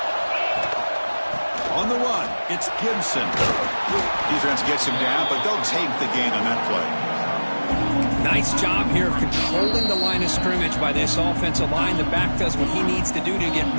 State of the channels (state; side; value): inverted; both; correlation -1.00